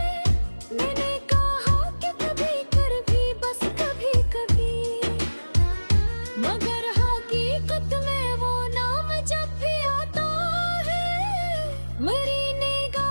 मैंने कहा कि कभी कर भी बस कभी कभी, मगर हकीकत में वो नाम जब भी आता है, मेरी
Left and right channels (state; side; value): inverted; both; correlation -1.00